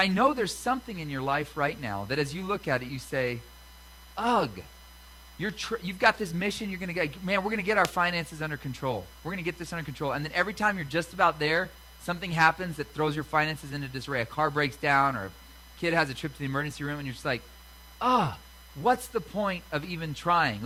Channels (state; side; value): identical; both; correlation 1.00